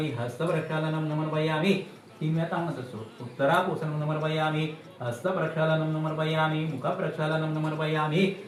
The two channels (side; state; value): both; identical; correlation 1.00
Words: हस्तप्रक्षालनं नमर्पयामि तीन वेळा तामणत असतो उत्तराभूषणं नमर्पयामि हस्तप्रक्षालनं नमर्पयामि मुखप्रक्षालनं नमर्पयामि